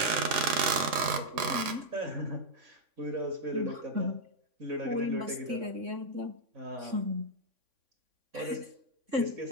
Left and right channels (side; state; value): left; late; 3.6 ms